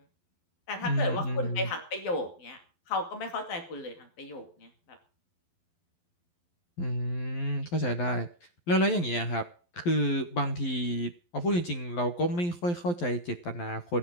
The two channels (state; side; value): late; right; 11 ms